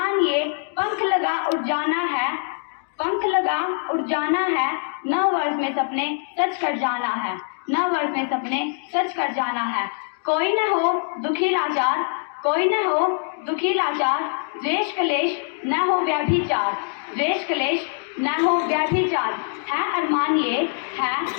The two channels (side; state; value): right; silent; 58 dB below the other